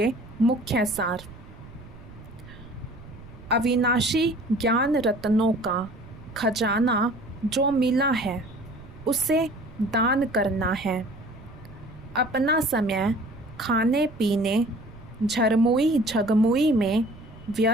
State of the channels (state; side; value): noise; right; rumble, 18 dB below the sound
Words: मुख्य सार। अविनाशी ज्ञान रत्नों का खजाना जो मिला है उसे दान करना है। अपना समय खाने पीने झरमुई झगमुई में